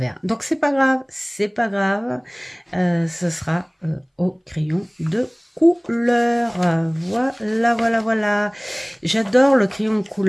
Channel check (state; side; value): identical; both; correlation 1.00